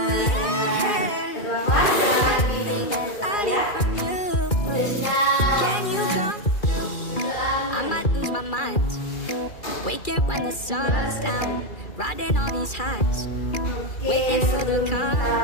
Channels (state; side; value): late; right; 2.4 ms